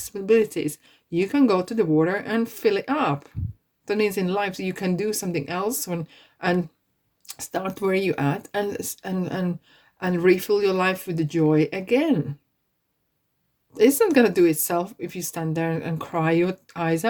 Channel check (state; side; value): identical; both; correlation 1.00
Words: You can go to the water and fill it up. That means in life you can do something else and start where you at and refill your life with the joy again. It's not gonna do itself if you stand there and cry your eyes